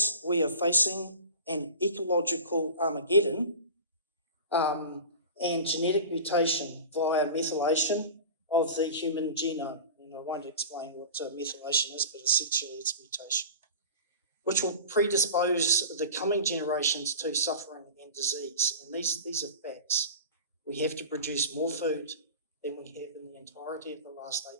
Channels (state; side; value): inverted; both; correlation -0.34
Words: we are facing an ecological Armageddon and genetic mutation via methylation of the human genome. And I won't explain what methylation is, but essentially it's mutation, which will predispose the coming generations to suffering and disease. And these are facts. We have to produce more food than we have in the entirety of the last